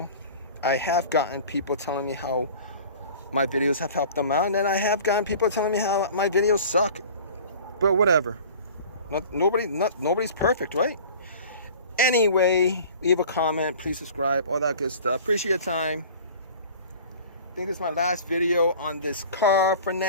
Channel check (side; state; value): both; inverted; correlation -0.43